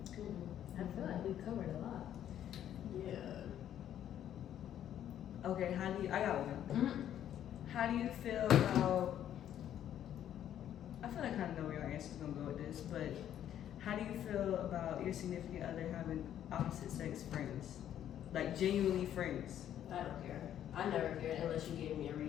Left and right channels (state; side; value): quieter; right; 10.7 dB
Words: I feel like we covered a lot. Yeah. okay, I got one. Mm-hmm. How do you feel about, I feel like I kind of know where your answer's gonna go with this, but how do you feel about your significant other having opposite sex friends? Like genuinely friends? I don't care. I never cared unless you gave me a